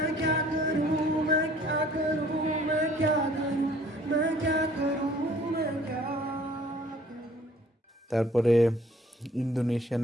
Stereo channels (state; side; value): normal; both; correlation 0.56